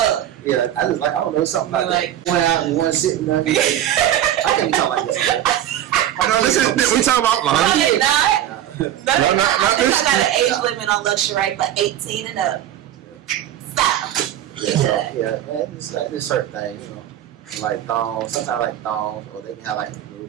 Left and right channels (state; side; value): quieter; left; 11.7 dB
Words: yeah, I don't know, something like that. One out and one sitting there. I can't talk like this. We talking about laundry. No, I think I got an age limit on Luxurei for 18 and up. Stop. Yeah, man, it's like this certain thing, like thongs. Sometimes I like thongs, or they can have like little